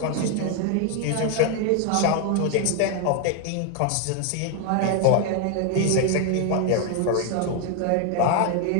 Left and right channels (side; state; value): both; different; correlation 0.01